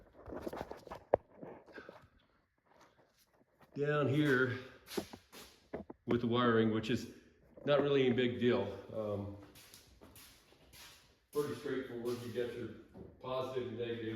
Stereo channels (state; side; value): identical; both; correlation 1.00